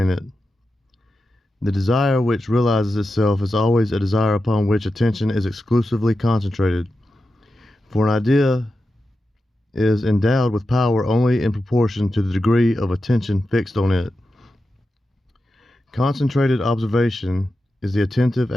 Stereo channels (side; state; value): both; normal; correlation 0.91